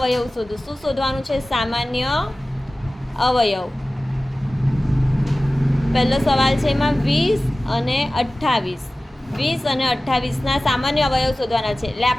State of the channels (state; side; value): normal; both; correlation 0.97